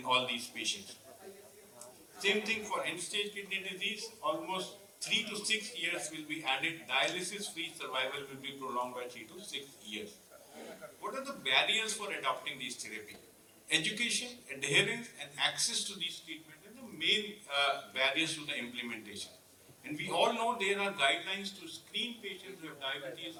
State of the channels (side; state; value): both; identical; correlation 1.00